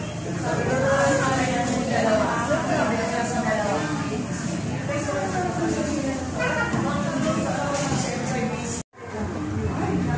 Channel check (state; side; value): identical; both; correlation 1.00